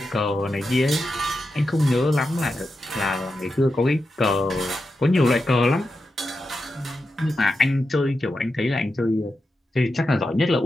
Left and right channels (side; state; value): both; normal; correlation 0.89